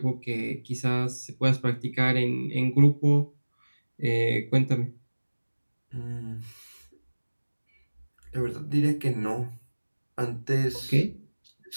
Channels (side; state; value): both; inverted; correlation -1.00